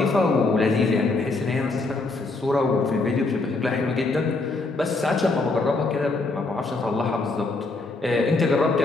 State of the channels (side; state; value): right; quieter; 3.4 dB